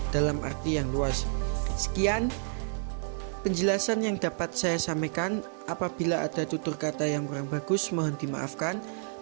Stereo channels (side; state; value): left; silent; 58 dB below the other